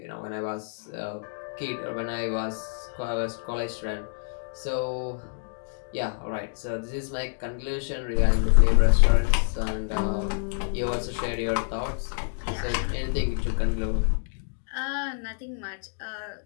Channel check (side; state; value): right; silent; digital silence